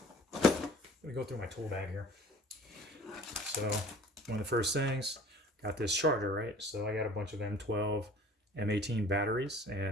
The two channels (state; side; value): normal; both; correlation 0.48